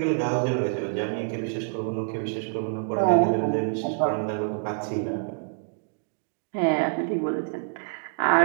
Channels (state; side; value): silent; left; digital silence